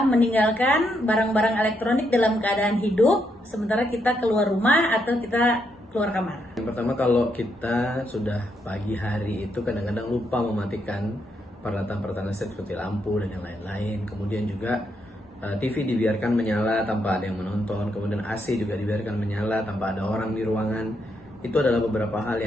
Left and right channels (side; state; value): both; normal; correlation 0.78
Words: meninggalkan barang-barang elektronik dalam keadaan hidup, sementara kita keluar rumah atau kita keluar kamar. Yang pertama, kalau kita sudah pagi hari itu kadang-kadang lupa mematikan peralatan-peralatan listrik seperti lampu dan yang lain-lain. Kemudian juga TV dibiarkan menyala tanpa ada yang menonton. Kemudian AC juga dibiarkan menyala tanpa ada orang di ruangan. Itu adalah beberapa hal